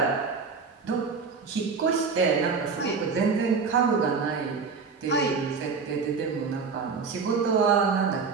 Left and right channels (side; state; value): left; quieter; 5.1 dB